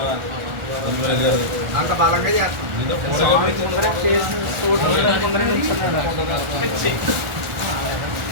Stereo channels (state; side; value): late; left; 1.4 ms